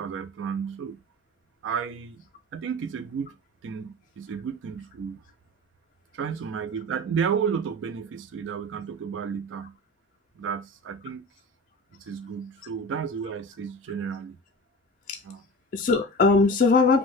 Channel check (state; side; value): normal; both; correlation 0.34